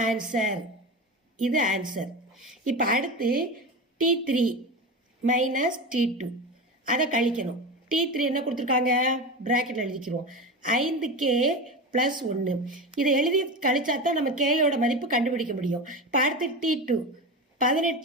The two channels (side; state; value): both; normal; correlation 0.24